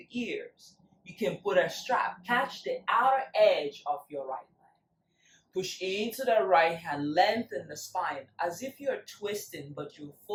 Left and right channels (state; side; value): identical; both; correlation 1.00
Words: ears. You can put a strap, catch the outer edge of your right leg. Push into the right hand, lengthen the spine as if you're twisting, but you're